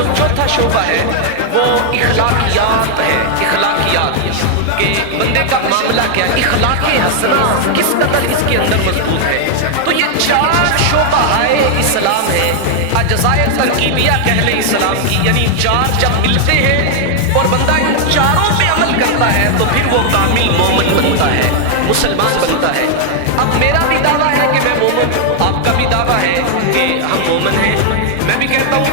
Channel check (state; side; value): different; both; correlation 0.00